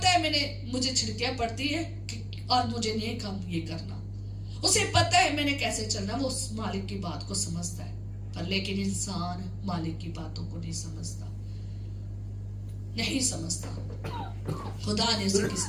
है मुझे छिड़कियां पड़ती है और मुझे नहीं काम ये करना, उसे पता है मैंने कैसे चलना, वो उस मालिक की बात को समझता है। पर लेकिन इंसान मालिक की बातों को नहीं समझता, नहीं समझता। खुदा ने उसे किस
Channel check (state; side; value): identical; both; correlation 1.00